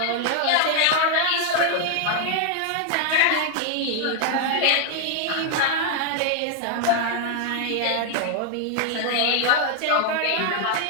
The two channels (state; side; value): different; both; correlation 0.00